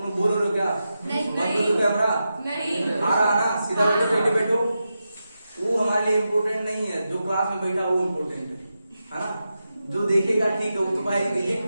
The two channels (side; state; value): both; inverted; correlation -0.89